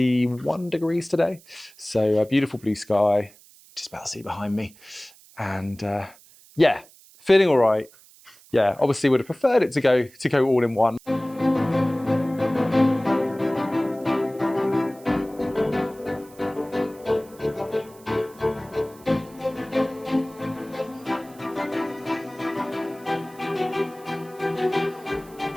degrees today. So beautiful blue sky, just about to see behind me. And yeah, feeling all right. Yeah, obviously would have preferred it to go all in one.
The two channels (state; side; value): noise; right; hiss, 25 dB below the sound